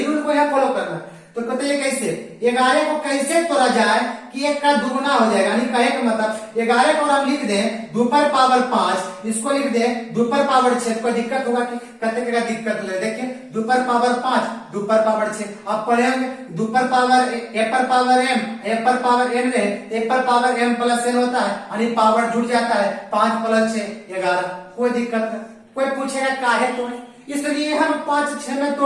रूल को यहाँ फॉलो करना। तो कहते हैं कैसे 11 को कैसे तोड़ा जाए कि 1 का दुगुना हो जाएगा, यानी कहे का मतलब 11 को हम लिख दें 2 पर पावर 5, इसको लिख दें 2 पर पावर 6, कोई दिक्कत होगा कि कहते क्या दिक्कत ले, देखिए 2 पर पावर 5 2 पर पावर 6, आप पढ़ेंगे 2 पर पावर ए पर पावर एम, ए पर पावर एन रहे, ए पर पावर एम प्लस एन होता है, यानी पावर जुड़ जाता है, 5 प्लस 6 11, कोई दिक्कत नहीं। कोई पूछेगा काहे तोड़े, इसलिए हम 5 6 में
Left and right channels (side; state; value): both; identical; correlation 1.00